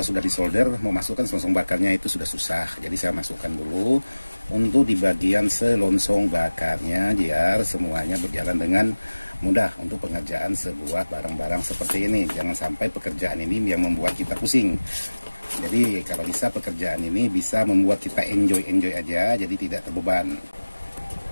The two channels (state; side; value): inverted; both; correlation -1.00